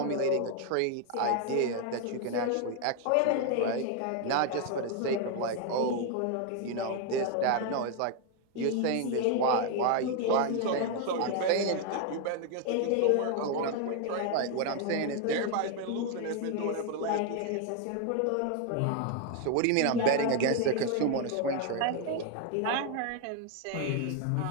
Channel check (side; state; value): both; different; correlation 0.01